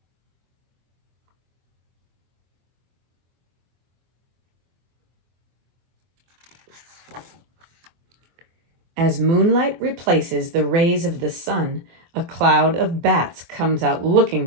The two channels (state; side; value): late; left; 24 ms